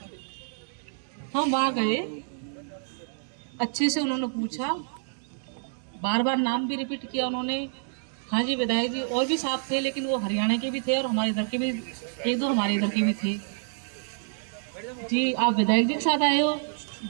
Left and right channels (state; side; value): silent; left; digital silence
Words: हम वहाँ गए, अच्छे से उन्होंने पूछा, बार बार नाम भी रिपीट किया उन्होंने। हाँ जी विधायक जी और भी साथ थे, लेकिन वो हरियाणा के भी थे और हमारे इधर के भी, 1-2 हमारे इधर के भी थे। जी आप विधायक जी के साथ आए हो?